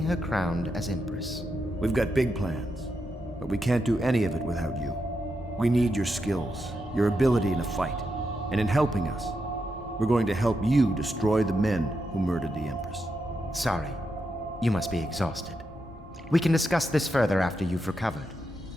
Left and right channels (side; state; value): both; normal; correlation 0.85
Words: her crowned as Empress. We've got big plans, but we can't do any of it without you. We need your skills, your ability in a fight, and in helping us, we're going to help you destroy the men who murdered the Empress. Sorry, you must be exhausted. We can discuss this further after you've recovered.